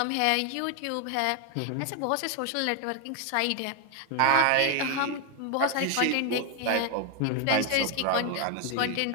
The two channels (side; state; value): both; different; correlation 0.01